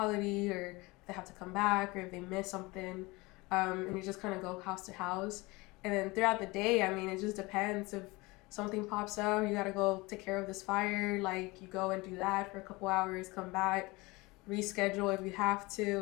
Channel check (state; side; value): quieter; right; 23.4 dB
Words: or if they have to come back, or if they miss something. And you just kind of go house to house. And then throughout the day, I mean, it just depends. If something pops up, you got to go take care of this fire, like you go and do that for a couple hours, come back, reschedule if you have